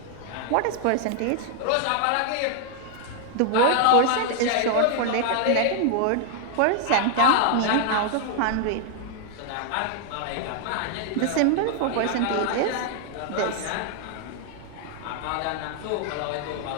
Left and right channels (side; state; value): both; different; correlation 0.00